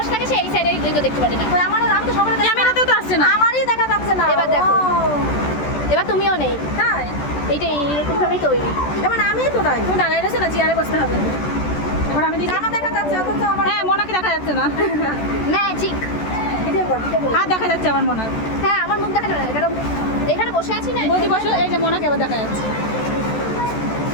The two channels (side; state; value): right; late; 14 ms